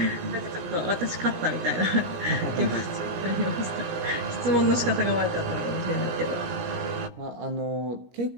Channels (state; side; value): late; left; 17 ms